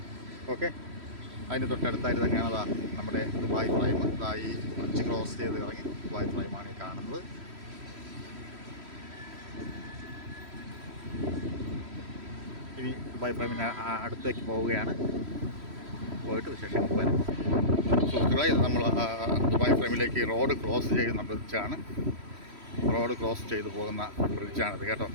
ഓക്കെ, അതിന് തൊട്ടടുത്തായിട്ട് തന്നെയാണ് നമ്മുടെ ദുബായ് ഫ്രൈം. ഈ ബ്രിഡ്ജ് ക്രോസ് ചെയ്ത് ഇറങ്ങി ദുബായ് ഫ്രൈമാണ് ഈ കാണുന്നത്. ഇനി ദുബായ് ഫ്രൈമിന് അടുത്തേക്ക് പോവുകയാണ്. പോയിട്ട് വിശേഷങ്ങൾ വരും. സുഹൃത്തുക്കളെ, ഇത് നമ്മൾ ദുബായ് ഫ്രൈമിലേക്ക് റോഡ് ക്രോസ് ചെയ്യുന്ന ബ്രിഡ്ജാണ്. റോഡ് ക്രോസ് ചെയ്ത് പോകുന്ന ബ്രിഡ്ജാണിത് കേട്ടോ.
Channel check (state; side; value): late; left; 3.1 ms